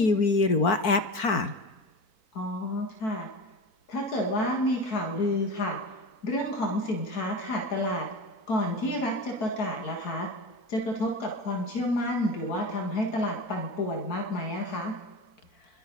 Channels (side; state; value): right; late; 4.5 ms